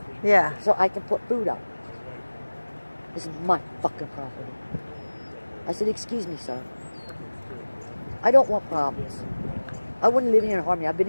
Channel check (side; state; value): both; inverted; correlation -1.00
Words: Yeah. So I can put food out. This is my fucking property. I said, excuse me, sir. I don't want problems. I wouldn't live here in harmony. I've been